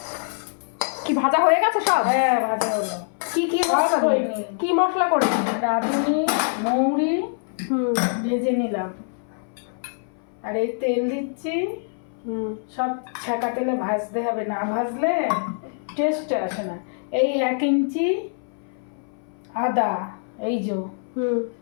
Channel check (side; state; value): right; silent; 60 dB below the other